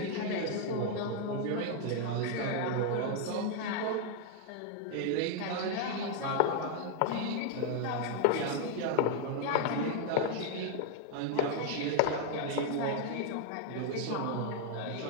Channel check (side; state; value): both; different; correlation 0.00